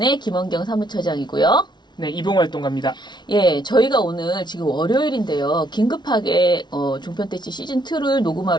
김원경 사무처장이고요. 네, 이봉활동가입니다. 예, 저희가 오늘 지금 월요일인데요. 긴급하게 종편대찌 시즌2를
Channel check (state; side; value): late; right; 0.21 ms